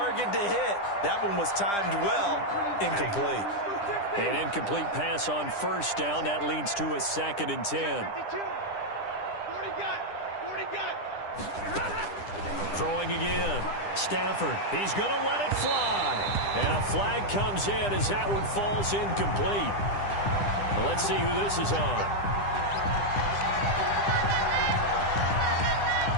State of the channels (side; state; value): right; late; 10 ms